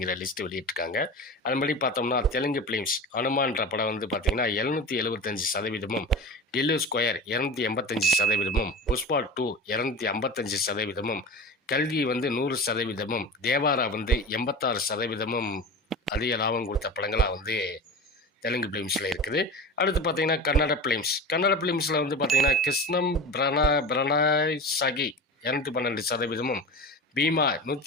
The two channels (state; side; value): normal; both; correlation 0.31